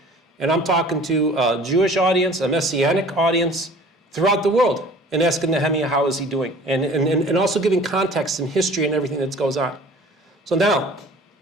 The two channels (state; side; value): normal; both; correlation 0.47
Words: and I'm talking to a Jewish audience, a Messianic audience throughout the world, and asking Nehemiah how is he doing, and also giving context and history and everything that goes on. So now,